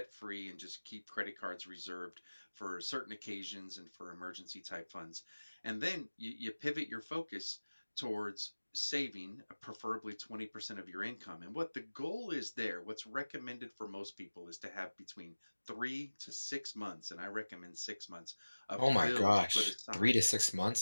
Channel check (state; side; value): inverted; both; correlation -1.00